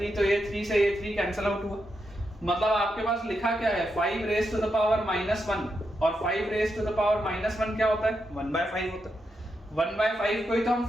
तो ये 3 से ये 3 कैंसिल आउट हुआ। मतलब आपके पास लिखा क्या है, 5 रेज टू द पावर -1, और 5 रेज टू द पावर -1 क्या होता है, 1/5 होता है। 1/5 को ही तो हम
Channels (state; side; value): normal; both; correlation 0.84